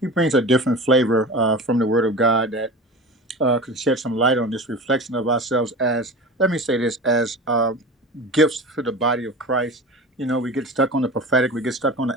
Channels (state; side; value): normal; both; correlation 0.32